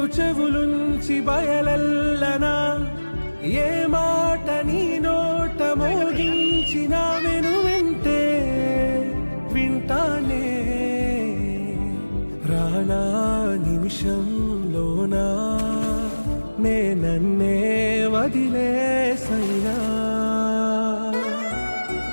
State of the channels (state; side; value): inverted; both; correlation -1.00